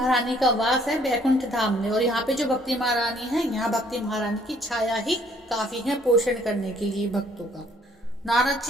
का वास है वैकुंठ धाम में, और यहाँ पे जो भक्ति महारानी है, यहाँ भक्ति महारानी की छाया ही काफी है पोषण करने के लिए भक्तों का। नारद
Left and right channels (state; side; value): normal; both; correlation 0.62